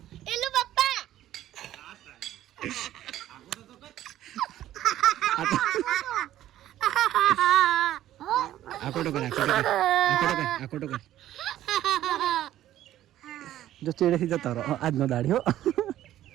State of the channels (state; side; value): quieter; left; 13.0 dB